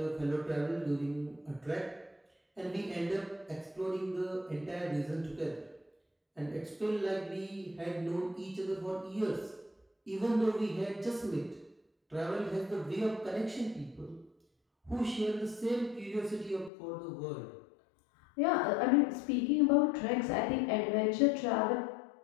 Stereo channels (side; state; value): right; drops out; at 16.7 s